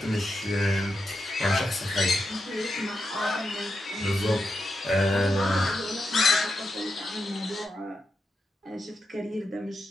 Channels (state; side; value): normal; both; correlation 0.86